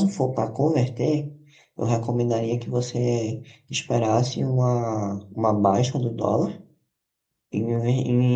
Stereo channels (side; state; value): both; identical; correlation 1.00